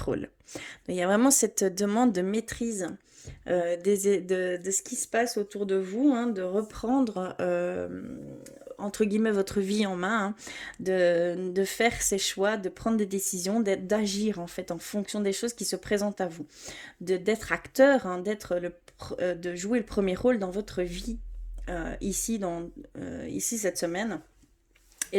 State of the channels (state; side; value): identical; both; correlation 1.00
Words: Donc, il y a vraiment cette demande de maîtrise de ce qui se passe autour de vous, hein, de reprendre entre guillemets votre vie en main, hein, de faire ses choix, de prendre des décisions, d'agir en fait en fonction des choses qui se présentent à vous, d'être acteur, hein, de jouer le premier rôle dans votre vie ici cette semaine.